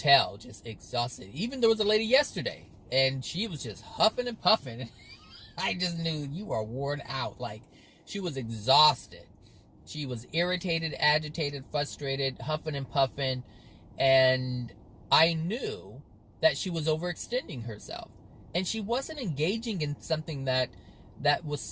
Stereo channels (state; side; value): identical; both; correlation 1.00